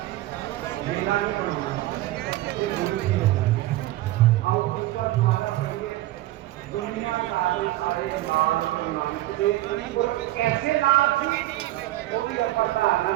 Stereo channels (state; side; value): quieter; left; 16.3 dB